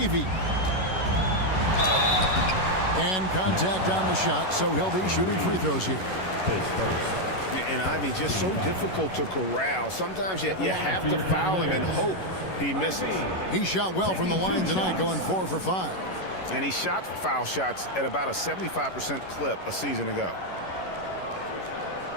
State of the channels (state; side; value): late; right; 11 ms